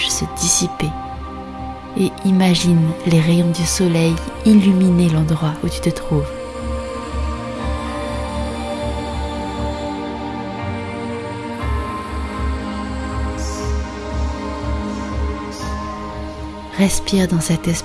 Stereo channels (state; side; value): identical; both; correlation 1.00